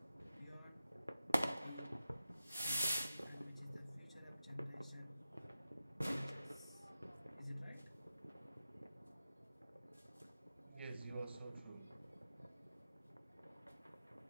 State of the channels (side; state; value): both; inverted; correlation -0.92